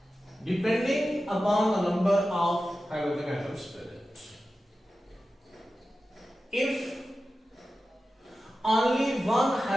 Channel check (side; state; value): both; normal; correlation 0.93